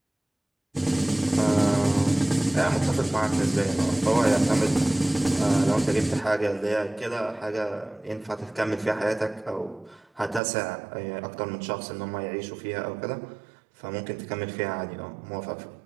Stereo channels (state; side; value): drops out; left; at 10.4 s